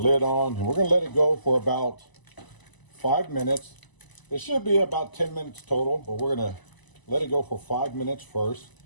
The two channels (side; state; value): right; late; 1.0 ms